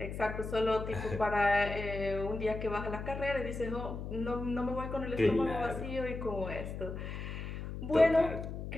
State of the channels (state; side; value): noise; left; hum, 7 dB below the sound